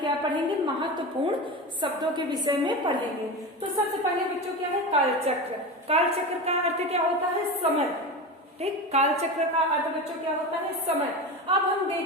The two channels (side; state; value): both; normal; correlation 0.24